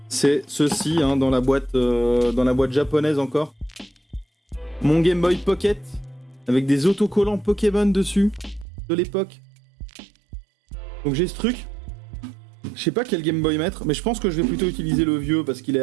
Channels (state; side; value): drops out; left; at 8.7 s